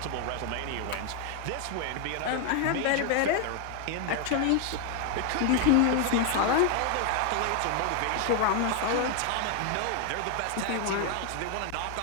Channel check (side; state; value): both; different; correlation 0.00